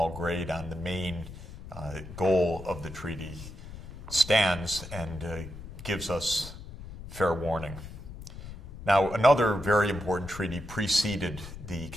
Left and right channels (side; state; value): left; noise; rumble, 13 dB below the sound